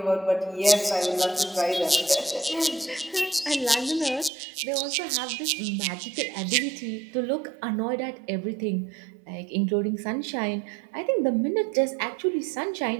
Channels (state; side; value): drops out; left; at 4.3 s